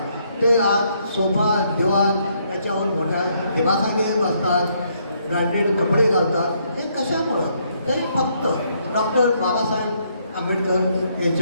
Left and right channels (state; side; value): inverted; both; correlation -0.72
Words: ते आज सोफा, दिवाण याच्यावर मोठ्या दिवाखाली बसतात, ब्रँडेड कपडे घालतात. हे कशामुळं? ते फक्त डॉक्टर बाबासाहेब आंबेडकर